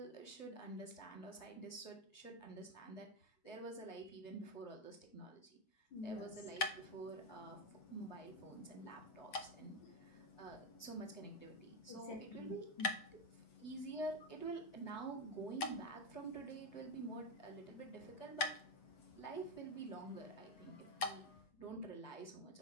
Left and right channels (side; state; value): right; late; 8.0 ms